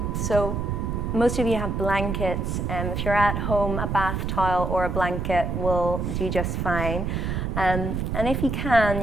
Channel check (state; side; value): noise; right; rumble, 1 dB below the sound